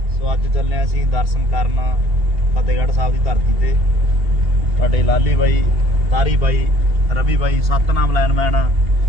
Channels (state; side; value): late; left; 2.8 ms